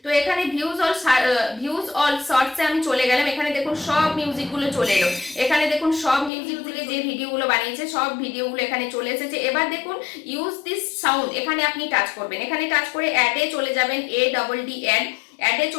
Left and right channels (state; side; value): drops out; right; at 6.3 s